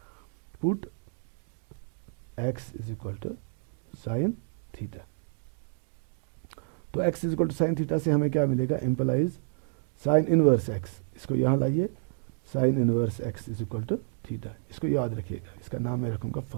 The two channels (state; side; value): silent; left; digital silence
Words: put x is equal to sine theta. तो x is equal to sine theta से हमें क्या मिलेगा, इम्प्लाइज साइन इनवर्स x, इसको यहाँ लाइए, sine inverse x is equal to theta. इसको याद रखिएगा, इसका नाम मैं रखूँगा